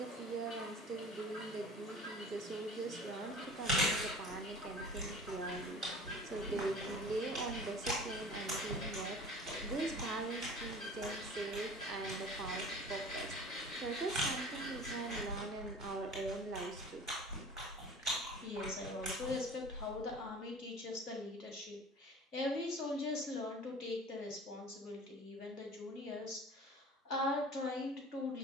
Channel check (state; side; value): normal; both; correlation 0.42